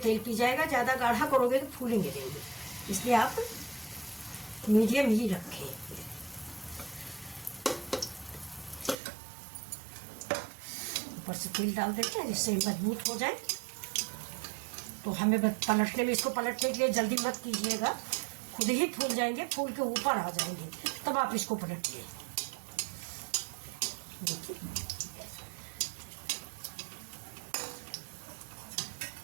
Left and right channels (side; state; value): left; drops out; at 9.0 s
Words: पी जाएगा, ज़्यादा गाढ़ा करोगे तो फूलेंगे नहीं। इसलिए आप मीडियम ही रखें। ऊपर से तेल डाल देते हैं जिससे मजबूत हो जाए। तो हमें पलटने में, इसको पलटने के लिए जल्दी मत कीजिएगा, खुद ही फूल जाएंगे, फूल के ऊपर आ जाएंगे, तब आप इसको पलटिए। देखिए